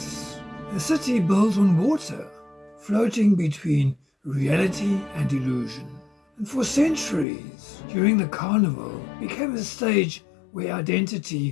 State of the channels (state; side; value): drops out; right; at 7.2 s